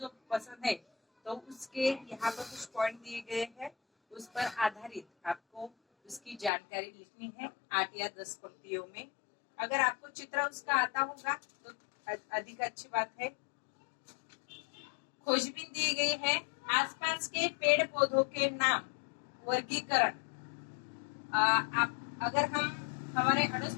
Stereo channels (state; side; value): drops out; right; at 6.5 s